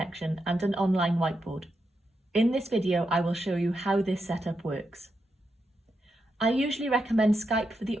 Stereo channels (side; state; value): both; normal; correlation 0.85